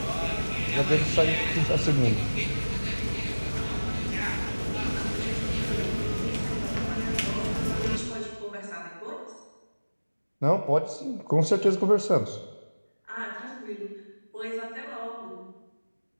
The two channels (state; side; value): inverted; both; correlation -1.00